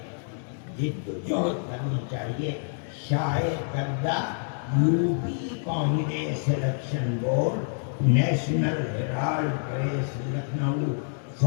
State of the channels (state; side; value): silent; right; 60 dB below the other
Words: جد و جہد کرنی چاہیے۔ شائع کردہ UP Congress election board, National Herald press, Lucknow,